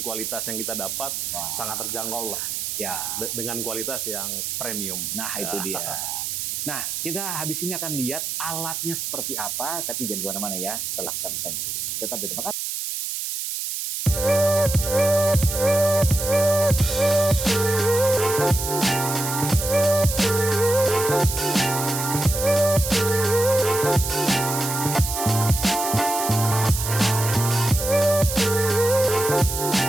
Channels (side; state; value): right; noise; hiss, 3 dB below the sound